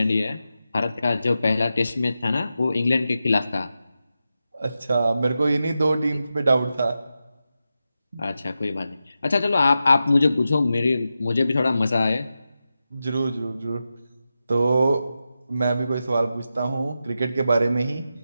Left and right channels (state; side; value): inverted; both; correlation -0.90